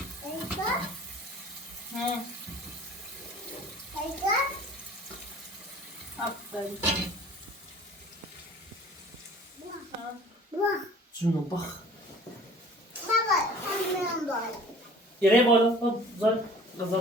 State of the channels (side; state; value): both; normal; correlation 0.48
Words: ها آفرین جونم بخ یه بالا خب زن غذا